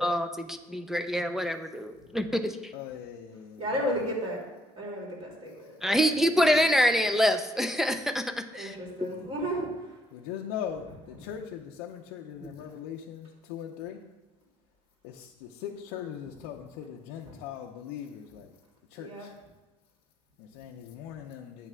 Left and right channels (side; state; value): both; normal; correlation 0.72